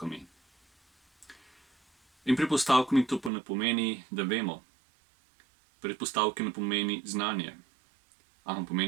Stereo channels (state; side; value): drops out; left; at 3.3 s